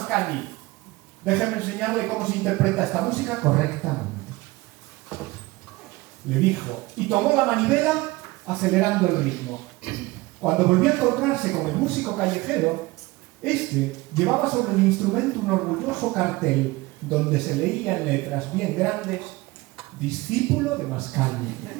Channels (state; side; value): quieter; left; 21.0 dB